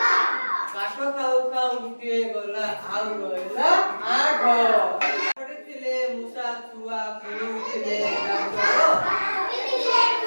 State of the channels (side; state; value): both; inverted; correlation -1.00